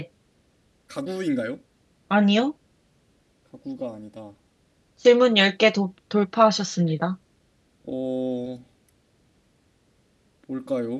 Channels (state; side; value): identical; both; correlation 1.00